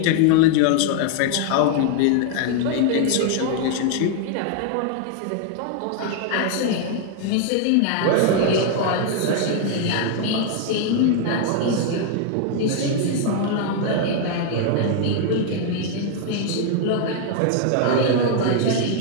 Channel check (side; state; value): both; different; correlation 0.00